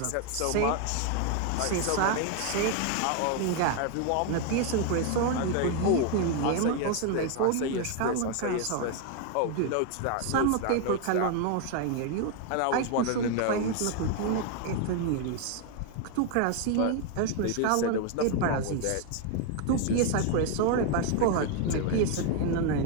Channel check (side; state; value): both; different; correlation 0.01